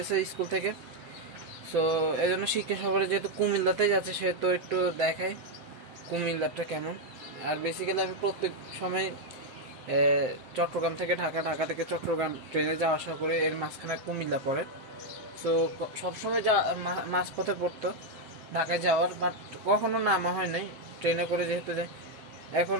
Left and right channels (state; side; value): late; left; 7.7 ms